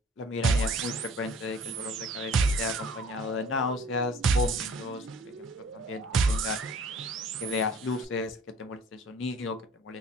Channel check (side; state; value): both; normal; correlation 0.51